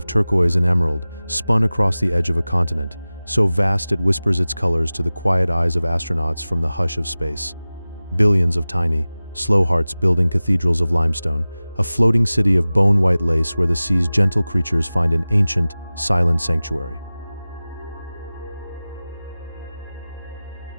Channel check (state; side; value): inverted; both; correlation -0.97